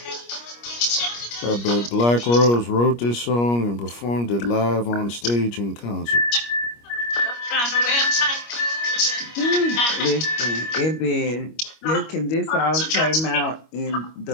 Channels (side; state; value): right; late; 25 ms